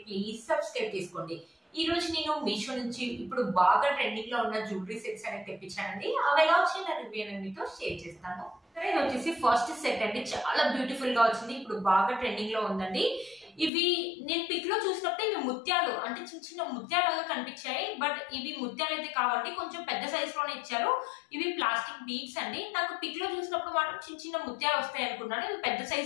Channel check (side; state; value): right; drops out; at 13.7 s